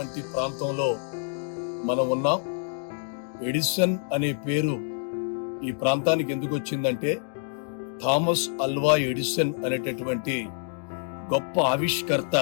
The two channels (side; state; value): right; silent; digital silence